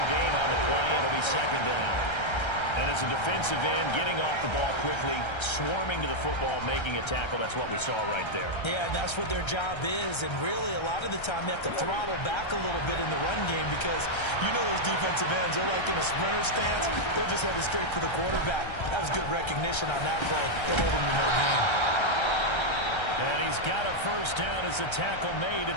gain on the play. It'll be second down. And as a defensive end, getting off the ball quickly, swarming to the football, making a tackle, that's what we saw right there. Yeah, and that's what their job is. And really, a lot of the time, they have to throttle back a little bit in the run game because you know those defensive ends, they're like in a sprinter stance. They're just headed straight for the quarterback. That was good recognition on that play. They'll hold him to no gain. And he's got a first down as a tackle made at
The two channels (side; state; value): right; late; 1.3 ms